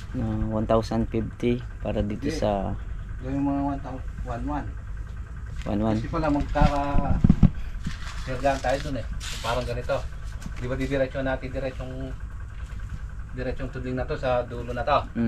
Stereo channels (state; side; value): identical; both; correlation 1.00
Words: na 1,050 para dito sa yung mga 1,111. 1,1. Kasi pala magkaka-sergaan tayo dun eh. Parang ganito. Di ba didiretso natin diretsong tudling na to sa dulo na to.